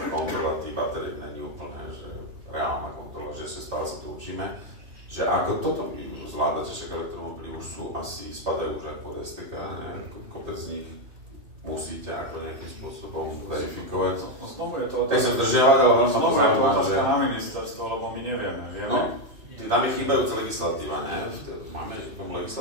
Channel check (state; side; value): late; left; 3.0 ms